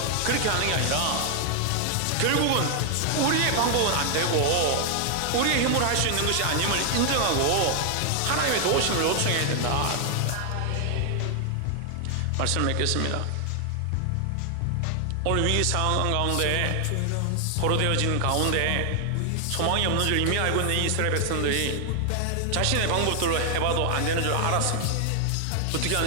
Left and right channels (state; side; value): different; both; correlation 0.00